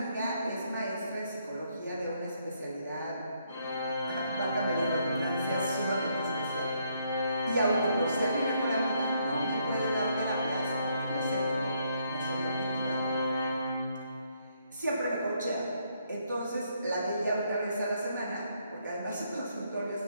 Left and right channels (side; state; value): both; inverted; correlation -0.73